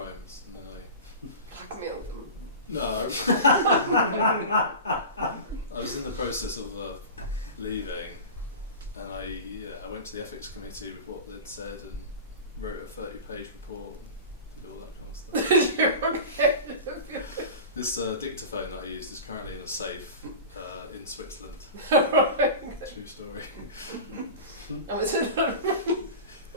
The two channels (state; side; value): inverted; both; correlation -0.31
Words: and then Blackmailed them. No. I was in the process of leaving, and I went to the ethics committee with what they'd said and wrote a 30-page report and did all that kind of stuff. You're okay. This dictaphone that I used is currently in a safe in Switzerland. True story. And was it